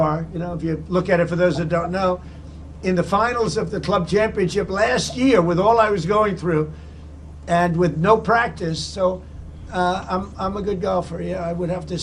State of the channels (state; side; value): identical; both; correlation 1.00